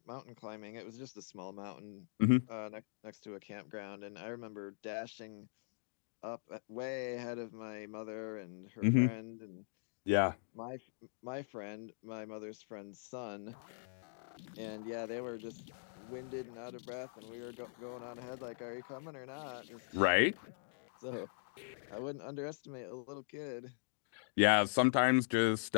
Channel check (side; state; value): right; silent; digital silence